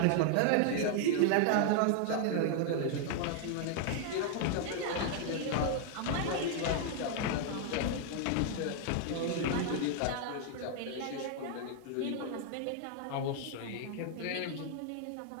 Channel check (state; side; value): different; both; correlation 0.00